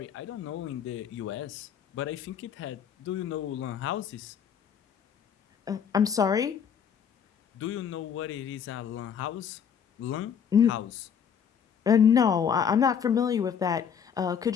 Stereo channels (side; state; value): right; quieter; 7.7 dB